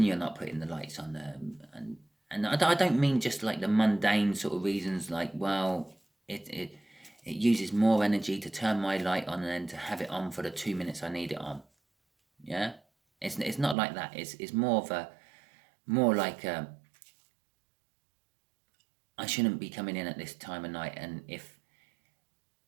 you're not putting the lights on, and And I don't mean just like the mundane sort of reasons, like, well, it uses more energy to turn my light on than to have it on for the 2 minutes I need it on. Yeah, it's not like that. It's more of a more like I shouldn't be coming in at this time of night, and if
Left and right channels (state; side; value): drops out; left; at 13.8 s